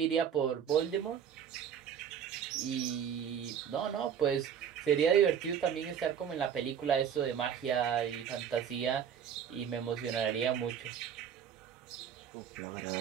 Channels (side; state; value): left; quieter; 8.4 dB